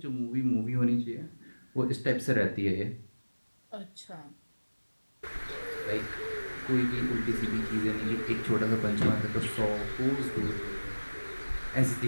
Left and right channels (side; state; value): both; inverted; correlation -1.00